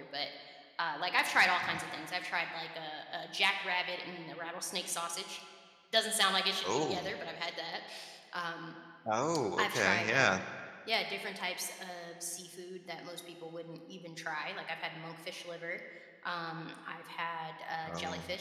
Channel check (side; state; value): both; identical; correlation 1.00